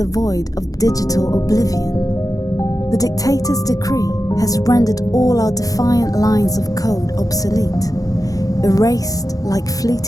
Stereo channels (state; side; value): late; right; 0.17 ms